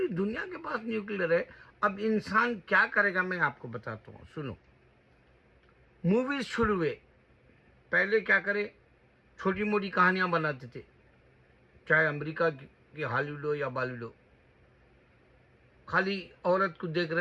दुनिया के पास न्यूक्लियर है। अब इंसान क्या करेगा मैं आपको बताता हूँ, सुनो। मूवीज शुरू हुए, पहले क्या करे, छोटी मोटी कहानियाँ बनाते थे, चाहे अमेरिका की हॉलीवुड हो या बॉलीवुड हो। खाली औरत को देख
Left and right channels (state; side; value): identical; both; correlation 1.00